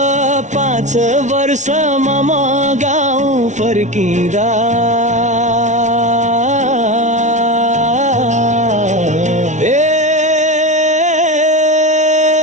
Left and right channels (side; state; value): left; late; 0.35 ms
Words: 5 वर्षमा म गाउँ फर्किँदा